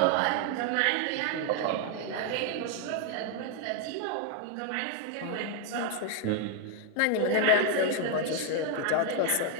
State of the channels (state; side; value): different; both; correlation 0.00